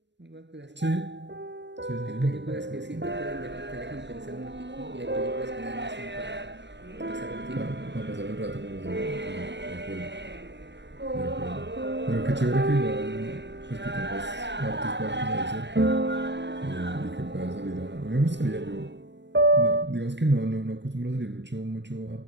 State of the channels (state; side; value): late; left; 0.52 ms